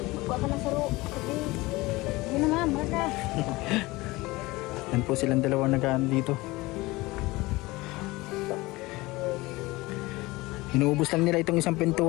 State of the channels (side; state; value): right; quieter; 21.2 dB